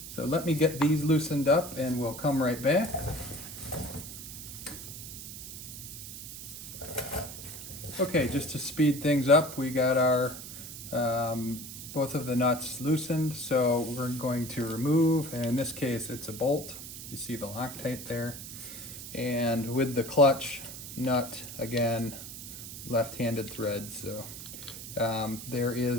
so let me get these loosened up and we'll come right back. Okay, just to speed things up, we got our both of the nuts loosened, so we're going to remove, and in this case it's a bolt. You see the Loctite there. And with the clutch nut, again, left-handed thread, so there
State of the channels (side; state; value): right; noise; hiss, 11 dB below the sound